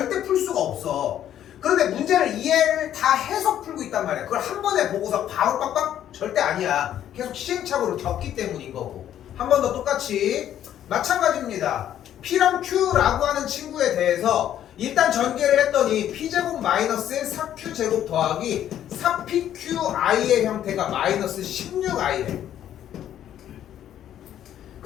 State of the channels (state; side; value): quieter; right; 10.9 dB